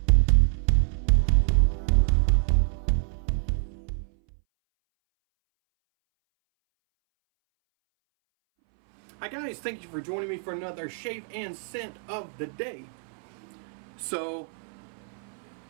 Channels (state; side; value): silent; left; 60 dB below the other